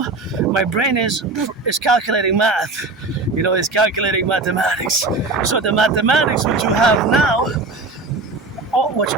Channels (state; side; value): quieter; left; 3.5 dB